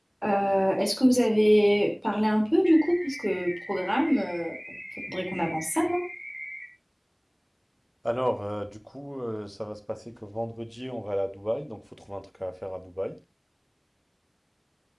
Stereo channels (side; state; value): both; identical; correlation 1.00